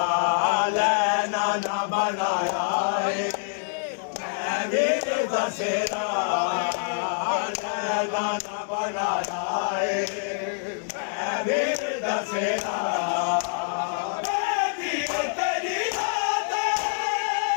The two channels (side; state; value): right; silent; digital silence